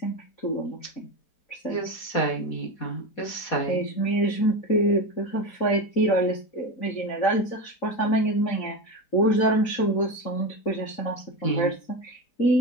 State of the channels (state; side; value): late; right; 4.2 ms